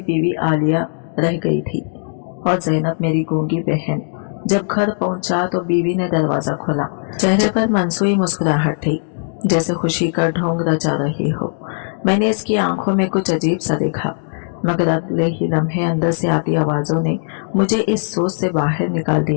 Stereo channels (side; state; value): right; silent; digital silence